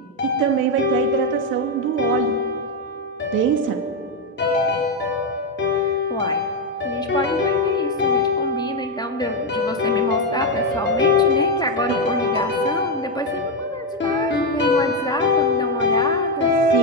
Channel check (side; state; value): both; normal; correlation 0.06